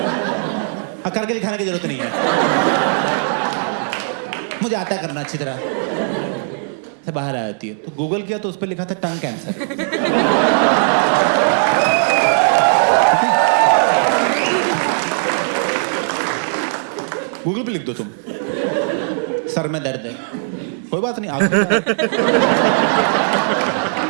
हाँ, करके दिखाने की जरूरत नहीं है, मुझे आता है करना अच्छी तरह से बाहर आ जाती है। तो गूगल किया तो उस पर लिखा था टंग कैंसर। गूगल पे लिख दो तुम सर में दर्द है, कोई बात नहीं, आगे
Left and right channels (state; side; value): silent; left; digital silence